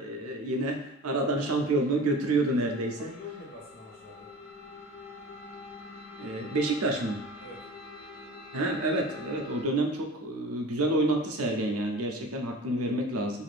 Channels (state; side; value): normal; both; correlation 0.38